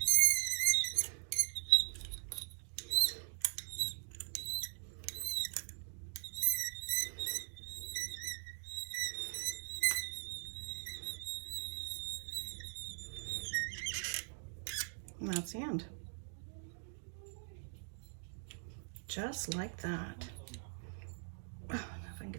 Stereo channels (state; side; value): silent; left; digital silence